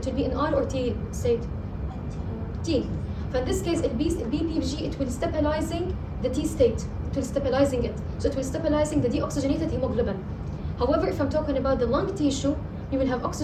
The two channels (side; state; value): both; identical; correlation 1.00